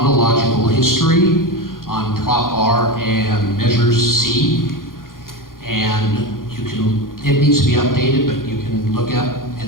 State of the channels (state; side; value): late; right; 0.91 ms